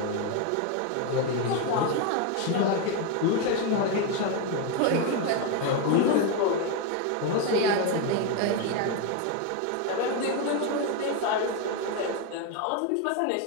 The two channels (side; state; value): both; different; correlation 0.02